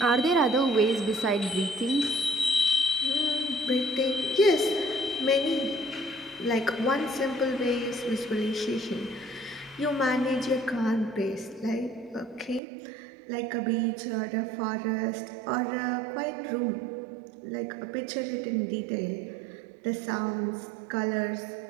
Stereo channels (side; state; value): left; drops out; at 12.6 s